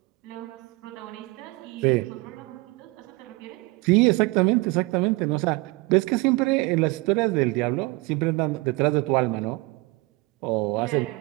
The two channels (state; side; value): quieter; left; 23.8 dB